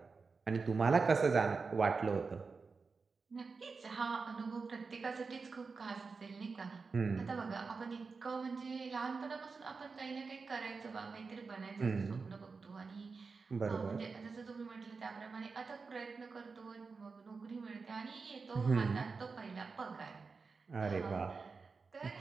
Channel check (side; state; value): left; quieter; 4.6 dB